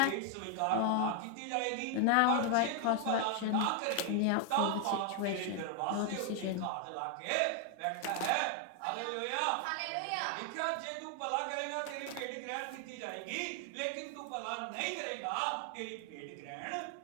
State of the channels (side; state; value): both; different; correlation 0.00